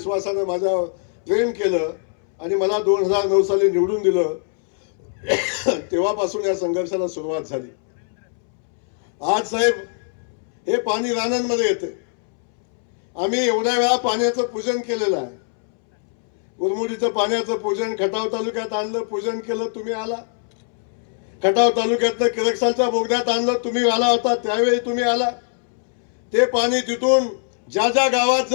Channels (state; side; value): silent; right; 65 dB below the other